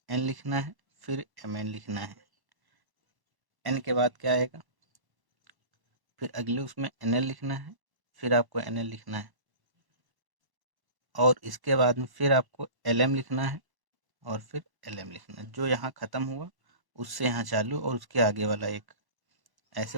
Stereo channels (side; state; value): left; late; 1.1 ms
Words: एन लिखना है, फिर एम एन लिखना है, एन के बाद क्या आएगा, फिर अगले उसमें एन एल लिखना है, फिर आपको एन एल लिखना है, और इसके बाद में फिर आपको एल एम लिखना है, और फिर एल एम लिखना है। जो यहाँ ख़त्म हुआ उससे यहाँ चालू, और उसके आगे वाला एक ऐसे